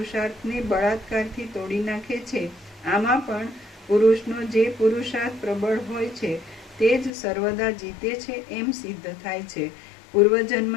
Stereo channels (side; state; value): right; drops out; at 7.1 s